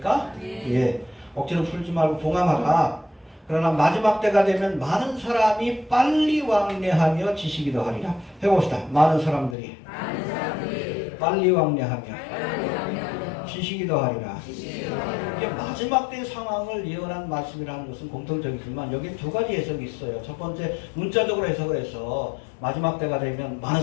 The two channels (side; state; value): right; drops out; at 9.6 s